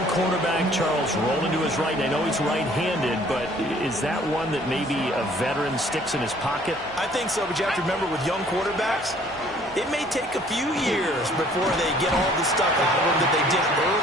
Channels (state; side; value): normal; both; correlation 0.57